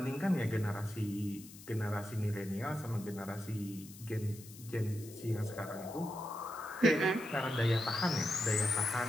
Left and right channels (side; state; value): left; noise; hiss, 17 dB below the sound